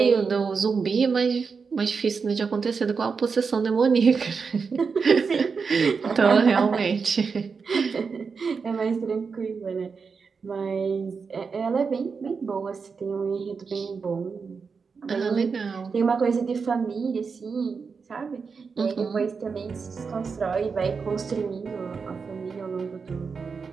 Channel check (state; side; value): quieter; left; 5.3 dB